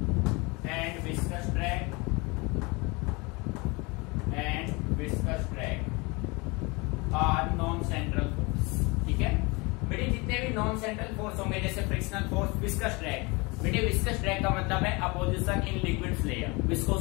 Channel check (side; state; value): right; quieter; 26.9 dB